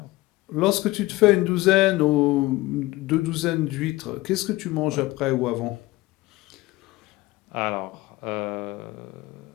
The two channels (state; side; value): quieter; right; 19.2 dB